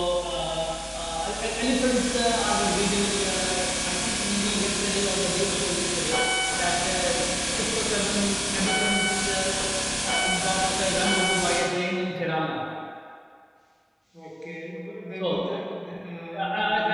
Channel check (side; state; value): both; identical; correlation 1.00